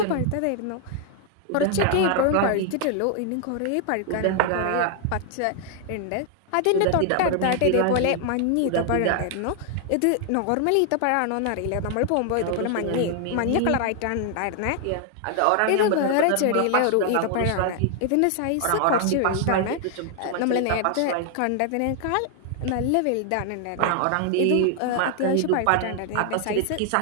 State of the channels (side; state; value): both; different; correlation 0.00